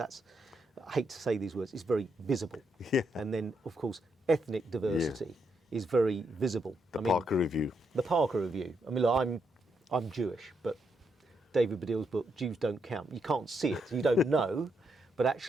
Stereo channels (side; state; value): both; normal; correlation 0.79